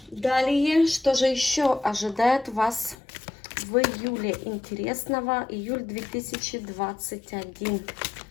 Далее, что же еще ожидает вас в июле интересного? Июль 2021.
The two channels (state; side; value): drops out; right; at 3.0 s